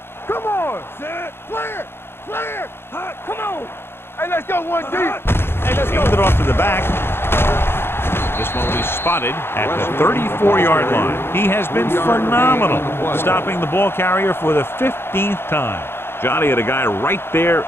Come on. Set. Clear. Come on. Hey, let's go one deep. Hey, let's go. Hand it off to the back. This one will be spotted at the 34-yard line. He has been phenomenal, stopping the ball carrier for the 15th time. Johnny had a guy right there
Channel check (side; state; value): right; late; 0.11 ms